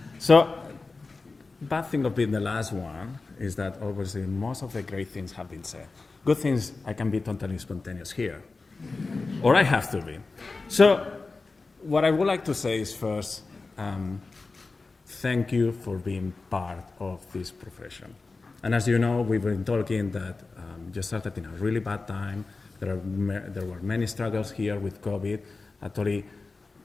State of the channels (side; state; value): right; quieter; 3.8 dB